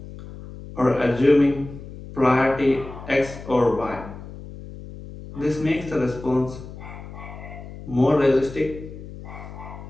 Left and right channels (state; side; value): noise; left; hum, 14 dB below the sound